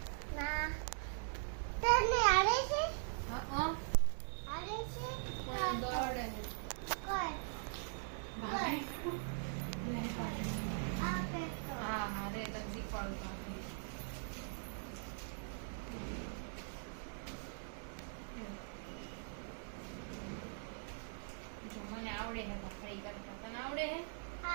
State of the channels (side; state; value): left; silent; digital silence